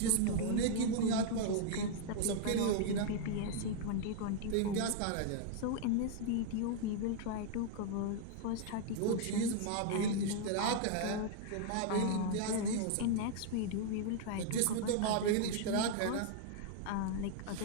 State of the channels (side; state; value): both; different; correlation 0.00